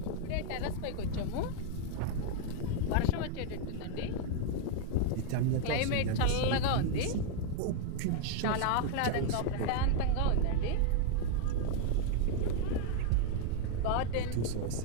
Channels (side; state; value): both; different; correlation 0.00